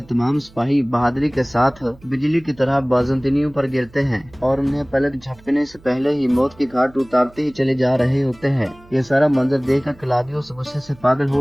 तमाम सिपाही बहादुरी के साथ बिजली की तरह बाज़ंतीनियों पर गिरते हैं और उन्हें पलक झपकने से पहले ही मौत की घाट उतारते ही चले जा रहे होते हैं। ये सारा मंजर देखकर कलादियोस गुस्से से पागल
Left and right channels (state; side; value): noise; right; hum, 25 dB below the sound